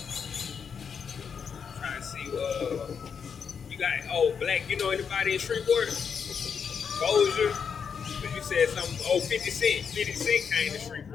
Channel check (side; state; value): right; quieter; 6.7 dB